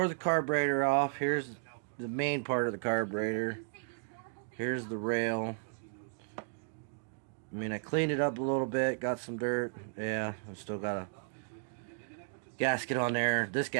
the carburetor off. Here's the main part of the carburetor. Here's the rail. I mean, I cleaned it up a little bit, got some dirt. Yeah, I still got a gasket on there. This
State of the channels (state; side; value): silent; left; digital silence